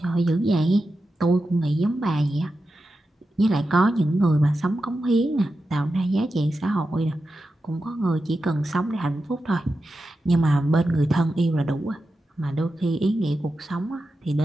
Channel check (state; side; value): normal; both; correlation 0.90